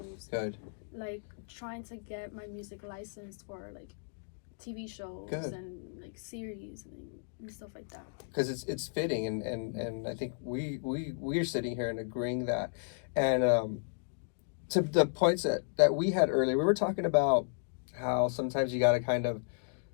good, like trying to get my music licensed for like TV shows and like series and stuff like that. because it's fitting, and I think we're sitting here and agreeing that. And to the points that we had earlier, we were talking about how sometimes you got to kind of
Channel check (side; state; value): right; silent; digital silence